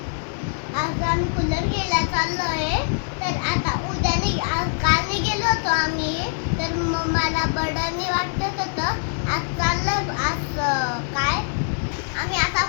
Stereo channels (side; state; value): right; silent; digital silence